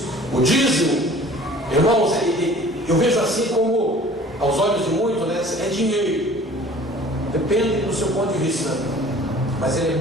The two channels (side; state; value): both; normal; correlation 0.48